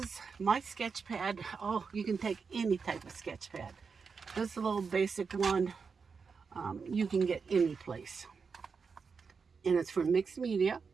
my sketch pad. Oh, you can take any type of sketch pad. This little basic one, you can get any place. And it's for mixed media.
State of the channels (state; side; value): quieter; left; 5.4 dB